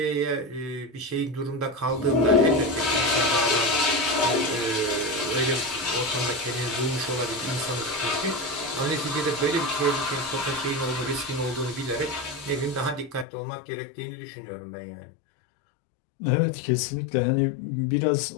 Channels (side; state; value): right; drops out; at 13.2 s